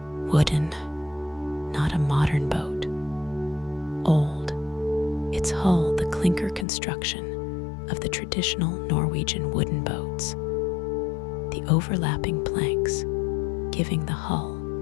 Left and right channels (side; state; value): right; drops out; at 6.7 s